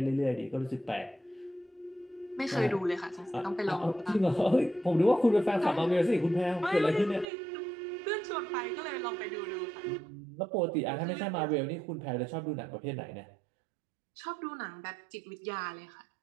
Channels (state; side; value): drops out; left; at 7.2 s